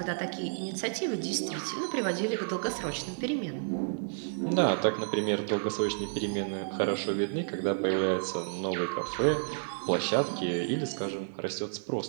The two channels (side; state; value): left; silent; 57 dB below the other